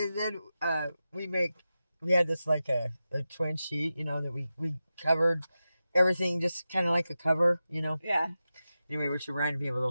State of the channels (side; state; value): both; inverted; correlation -0.92